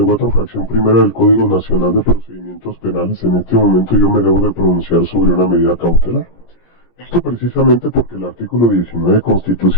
fracción primera del Código Nacional de Procedimientos Penales, en este momento yo me debo de pronunciar sobre una medida cautelar. Esto precisamente porque el artículo 19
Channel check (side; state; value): right; late; 17 ms